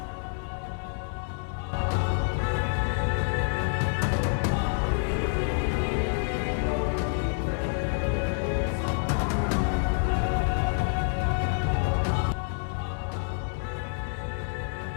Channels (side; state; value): right; silent; 59 dB below the other